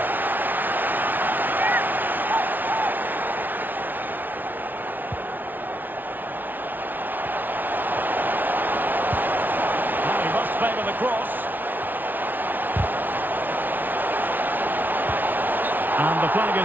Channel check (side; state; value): left; late; 0.086 ms